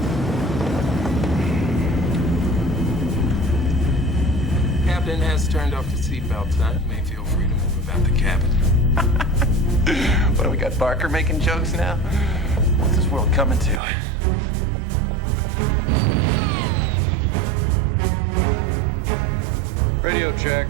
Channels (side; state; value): left; drops out; at 13.8 s